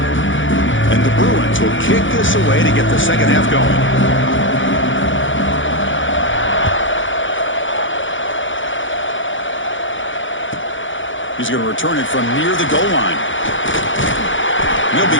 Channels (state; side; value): late; right; 0.56 ms